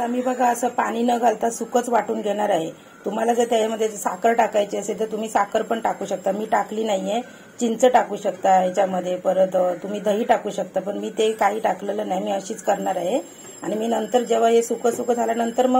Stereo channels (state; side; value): identical; both; correlation 1.00